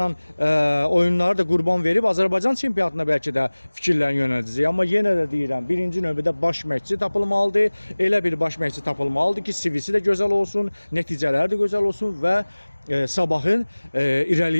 oyunları da qurban verib Azərbaycan çempionatına bəlkə də fikirlərini yönəldəcək. Amma yenə də deyirəm, birinci növbədə baş məşqçi tapılmalıdır. Elə bir baş məşqçi tapılmalıdır ki, CV-si də gözəl olsun, nəticələri də gözəl olsun və Sabahın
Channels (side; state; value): both; inverted; correlation -1.00